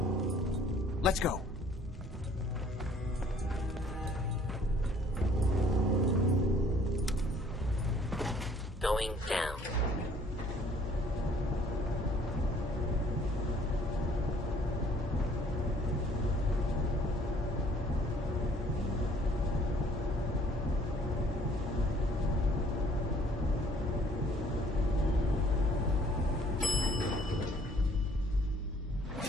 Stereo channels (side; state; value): both; normal; correlation 0.58